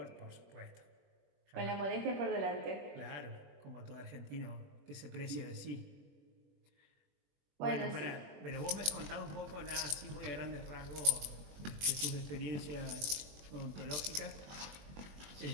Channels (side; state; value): left; late; 21 ms